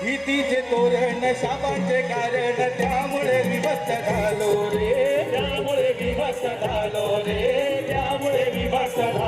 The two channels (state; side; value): identical; both; correlation 1.00